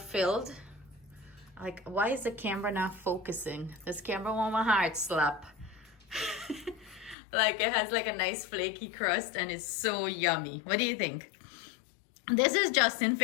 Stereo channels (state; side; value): drops out; right; at 7.2 s